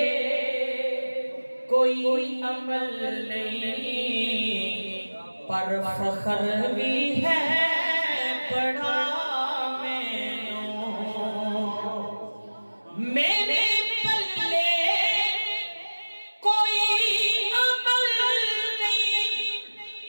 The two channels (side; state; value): both; inverted; correlation -1.00